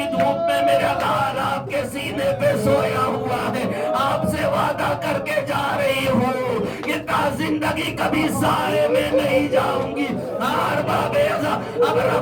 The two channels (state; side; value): identical; both; correlation 1.00